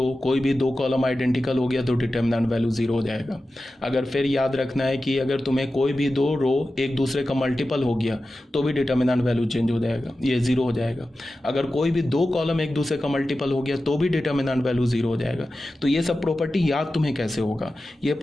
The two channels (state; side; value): normal; both; correlation 0.93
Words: कोई भी दो कॉलम आइडेंटिकल हो गया तो डिटर्मिनेंट वैल्यू 0 हो जाएगा। अगर फिर याद रखना है कि अगर तुम्हें कोई भी दो रो एक दूसरे का मल्टीपल हो गया तो भी डिटर्मिनेंट वैल्यू चेंज हो जाएगा, ये 0 हो जाएगा। अगर कोई भी दो कॉलम एक दूसरे का मल्टीपल हो गया तो भी डिटर्मिनेंट वैल्यू 0 हो जाएगा। तो ये सब प्रॉपर्टी याद तुम्हें कैसे होगा, ये